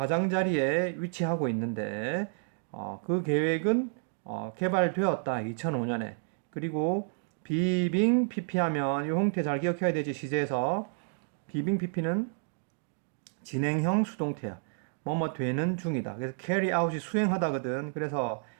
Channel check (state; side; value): silent; left; 58 dB below the other